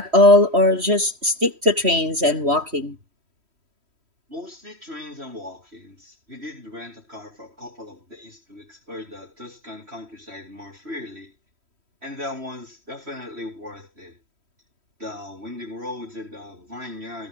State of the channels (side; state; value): left; late; 3.1 ms